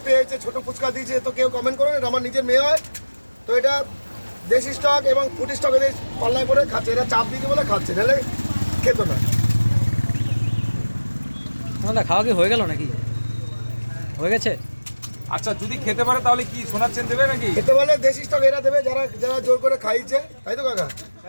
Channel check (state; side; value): inverted; both; correlation -1.00